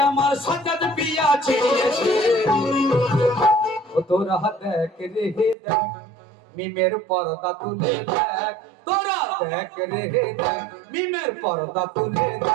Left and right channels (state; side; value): drops out; left; at 5.6 s